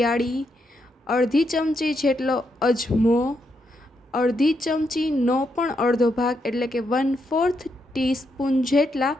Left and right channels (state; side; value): normal; both; correlation 0.80